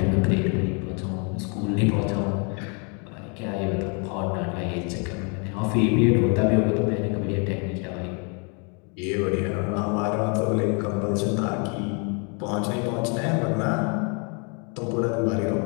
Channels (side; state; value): right; quieter; 36.5 dB